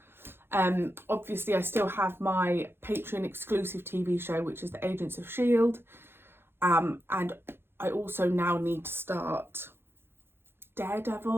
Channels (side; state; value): left; late; 0.11 ms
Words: Obviously I still have my Patreon exclusive TV show, which is the Agents of S.H.I.E.L.D. And I also now need to start